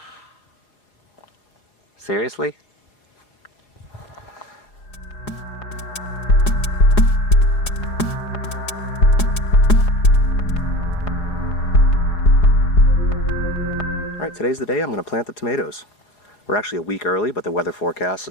Seriously? Alright, today's the day I'm going to plant the tomatoes. We're actually a week early, but the weather forecast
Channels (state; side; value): late; right; 4.8 ms